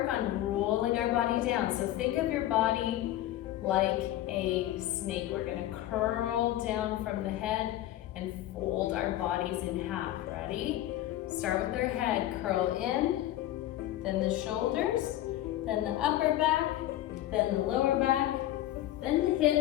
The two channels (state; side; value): quieter; right; 14.0 dB